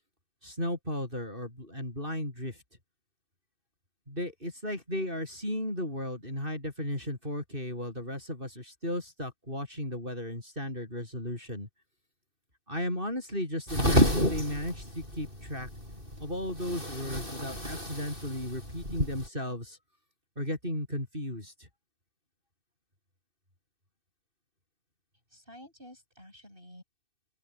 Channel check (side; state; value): left; late; 2.6 ms